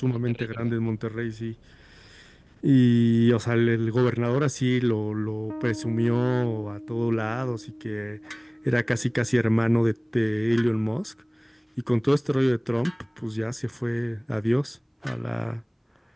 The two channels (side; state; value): both; identical; correlation 1.00